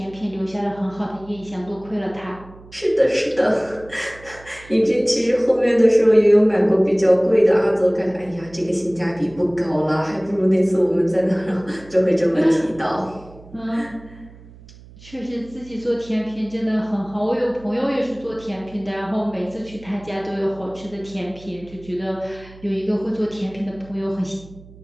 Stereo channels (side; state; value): right; noise; hum, 21 dB below the sound